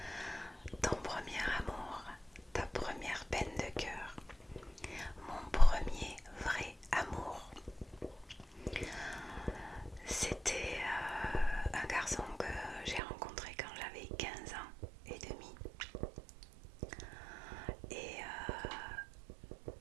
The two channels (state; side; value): drops out; left; at 13.0 s